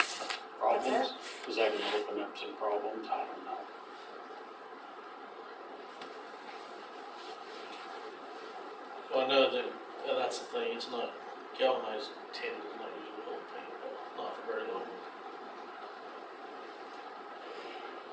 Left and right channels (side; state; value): both; identical; correlation 1.00